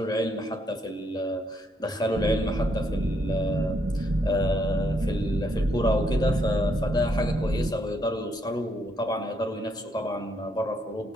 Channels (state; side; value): normal; both; correlation 0.74